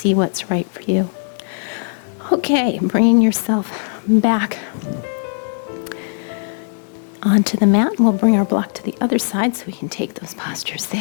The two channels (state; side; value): silent; right; digital silence